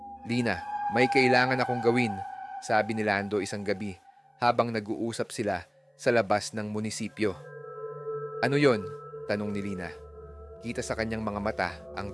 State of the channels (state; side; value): identical; both; correlation 1.00